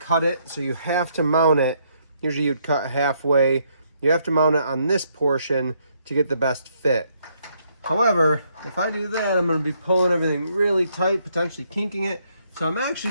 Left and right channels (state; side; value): inverted; both; correlation -0.72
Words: it. So you have to mount it. Usually you'd cut halfway. You have to mount it on this portion to get the best fit. However, if I do that, I'm going to be pulling everything really tight, potentially kinking it. So I'm